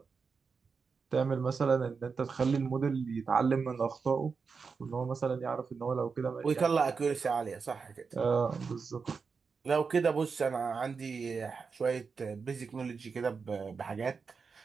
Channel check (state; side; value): quieter; left; 5.2 dB